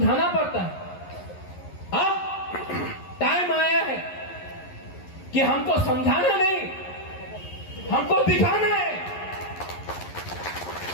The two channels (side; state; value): right; late; 11 ms